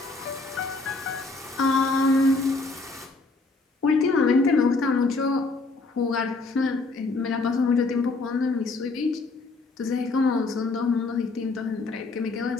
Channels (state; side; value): quieter; right; 3.5 dB